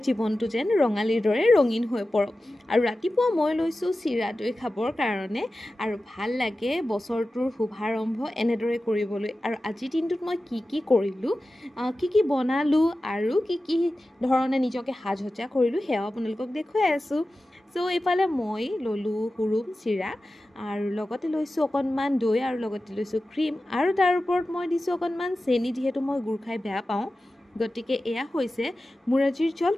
জীৱনটো যেন ৰঙালীৰ দৰে ৰঙীন হৈ পৰক আৰু ৰাতিপুৱা মই লৈছোঁ চিৰা দৈ খাবৰ কাৰণে আৰু ভাল লাগে বছৰটোৰ শুভাৰম্ভ এনেদৰে কৰিবলৈ আৰু আজিৰ দিনটোত মই কি কৰিলোঁ কি বনালোঁ আৰু কি ধৰণে নিজকে সাজসজ্জা কৰিলোঁ সেয়াও আপোনালোকক দেখুৱাই আছোঁ এইফালে মই ল'লোঁ হুৰুম চিৰা আৰু লগতে লৈছোঁ অকণমান দৈ আৰু লগতে লৈছোঁ ক্ৰীম আৰু তাৰ ওপৰত মই দিছোঁ অকণমান চেনি যিহেতু মই গুড় খাই বেয়া পাওঁ গতিকে এয়া হৈছে মোৰ আজিৰ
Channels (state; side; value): normal; both; correlation 0.94